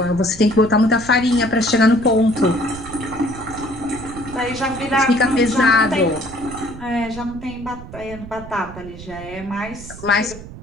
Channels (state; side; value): noise; right; rumble, 14 dB below the sound